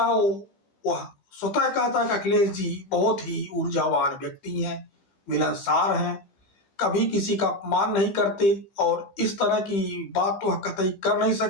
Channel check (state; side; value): late; right; 15 ms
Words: वह स्वतः कहता है कि अखिलेश जी बहुत ही ऊर्जावान व्यक्ति हैं, मिलनसार हैं, कभी किसी का अपमान नहीं करते और इस तरह की बात तो कतई कर नहीं